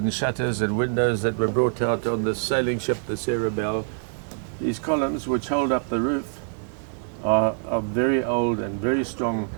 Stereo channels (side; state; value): left; silent; digital silence